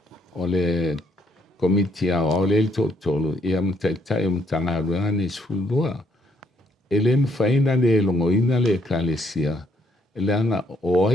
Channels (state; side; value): normal; both; correlation 0.70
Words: o le komiti o le totolu ia mtaitai o mtangaruanga ni sfulua e le mwhaina le longoina le ekalesia e le anga o